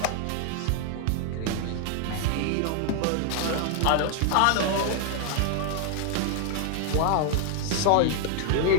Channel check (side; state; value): both; different; correlation 0.00